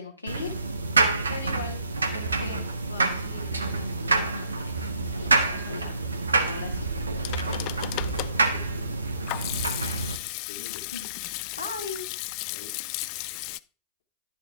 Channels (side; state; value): both; inverted; correlation -0.65